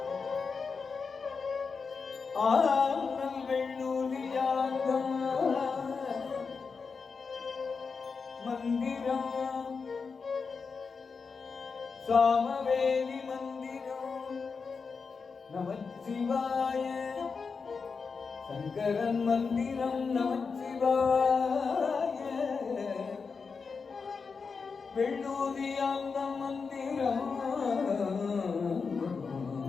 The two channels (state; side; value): quieter; right; 5.1 dB